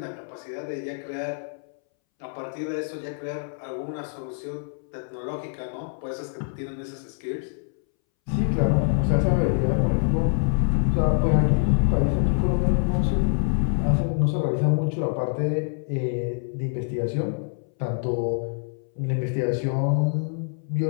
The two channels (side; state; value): right; silent; 61 dB below the other